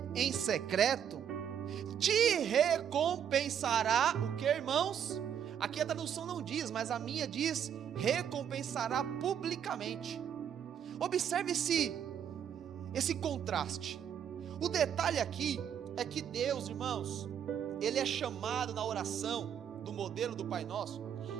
em secreto te recompensará. O que, irmãos? Aqui a tradução não diz, mas a minha diz: recompensará publicamente. Observe esse contraste. O detalhe aqui é que Deus, irmãos, ele é chamado na oração do modelo do Pai Nosso.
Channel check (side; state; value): left; quieter; 8.8 dB